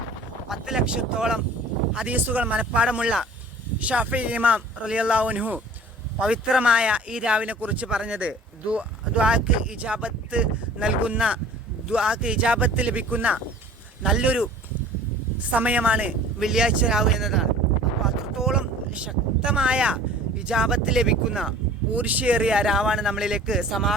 10 ലക്ഷത്തോളം ഹദീസുകൾ മനഃപ്പാടമുള്ള ഷാഫി ഇമാം റളിയല്ലാഹു അൻഹു പവിത്രമായ ഈ രാവിനെ കുറിച്ച് പറഞ്ഞത് ദുആക്ക് ഇജാബത്ത് നൽകുന്ന, ദുആക്ക് ഇജാബത്ത് ലഭിക്കുന്ന നല്ലൊരു സമയമാണ് വെള്ളിയാഴ്ച രാവ് എന്നതാണ്. അപ്പോൾ അത്രത്തോളം ശക്തമായ ഇജാബത്ത് ലഭിക്കുന്ന ഊർഷ്യേറിയ രാവാണ് നമ്മളിലേക്ക്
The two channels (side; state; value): both; normal; correlation 0.46